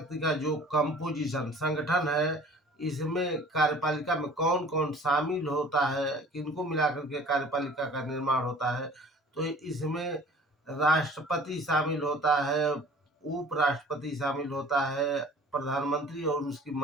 का जो कंपोजिशन संगठन है, इसमें कार्यपालिका में कौन कौन शामिल होता है, किनको मिलाकर के कार्यपालिका का निर्माण होता है, तो इसमें राष्ट्रपति शामिल होता है, उपराष्ट्रपति शामिल होता है, प्रधानमंत्री और उसकी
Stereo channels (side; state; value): both; normal; correlation 0.48